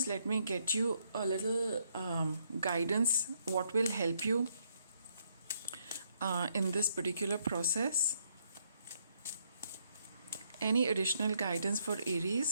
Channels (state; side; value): inverted; both; correlation -0.72